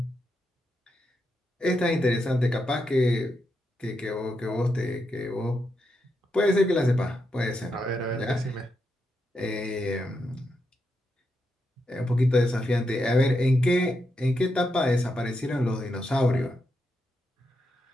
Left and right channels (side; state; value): both; normal; correlation 0.84